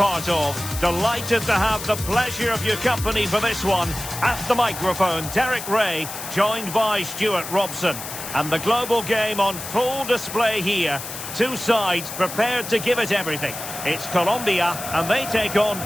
of. Delighted to have the pleasure of your company for this one. At the microphone, Derek Ray, joined by Stuart Robson. And the global game on full display here. Two sides prepared to give it everything. It's Colombia, and they take on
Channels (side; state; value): left; noise; hiss, 9 dB below the sound